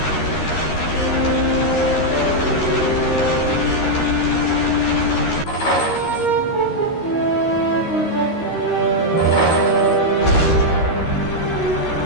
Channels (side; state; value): right; late; 13 ms